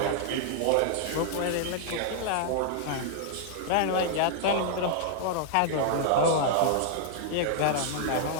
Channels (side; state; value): both; different; correlation -0.01